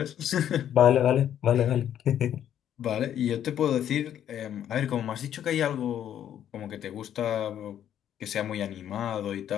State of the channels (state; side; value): quieter; right; 10.3 dB